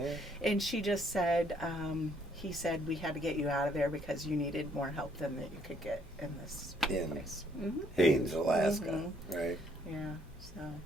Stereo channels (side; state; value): both; normal; correlation 0.67